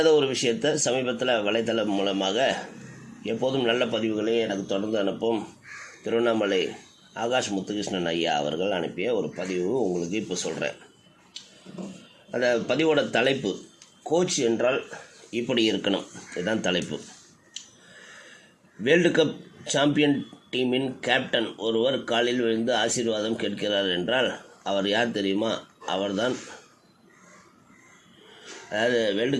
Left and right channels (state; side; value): identical; both; correlation 1.00